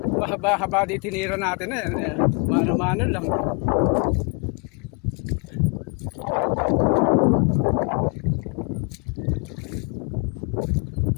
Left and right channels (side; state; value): right; quieter; 35.5 dB